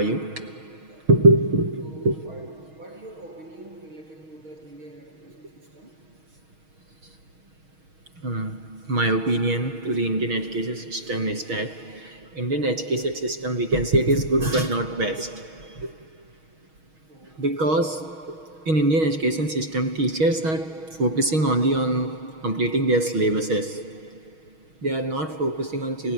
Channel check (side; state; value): left; late; 6.3 ms